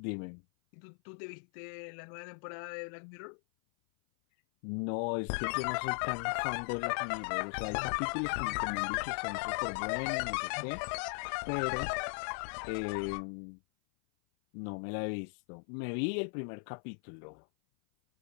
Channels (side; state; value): right; silent; 53 dB below the other